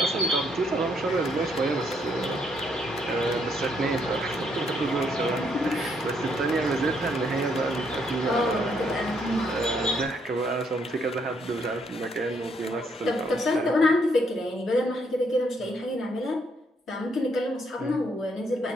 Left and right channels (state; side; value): normal; both; correlation 0.72